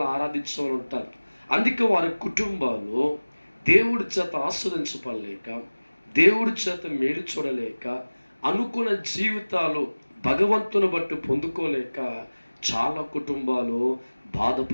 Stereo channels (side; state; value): both; inverted; correlation -1.00